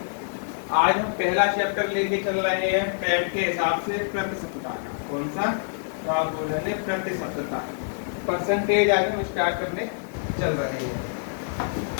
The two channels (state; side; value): silent; right; digital silence